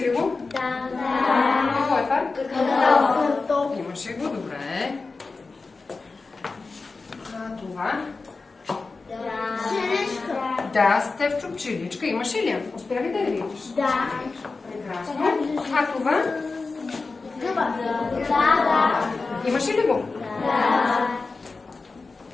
ли го? Да. Какво е това? Картоф. Имаше го, добре. А това? Черешка. Да, Стефчо, пчеличка. Имаше ли я? Успя ли да я видиш? Да. Прекрасно. А това? Гъба. Да. Имаше ли го? Да.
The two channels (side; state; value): right; quieter; 4.0 dB